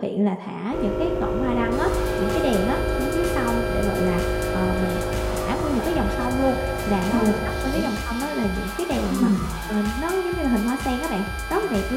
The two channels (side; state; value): both; identical; correlation 1.00